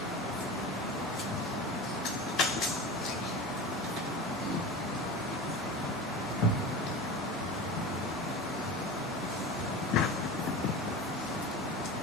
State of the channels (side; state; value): both; normal; correlation 0.30